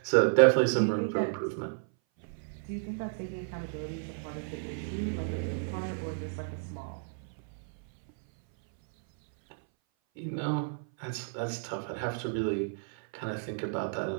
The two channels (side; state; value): left; silent; 57 dB below the other